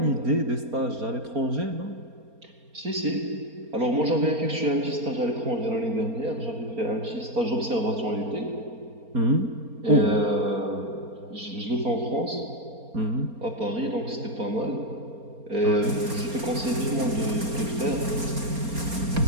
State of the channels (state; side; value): late; left; 4.3 ms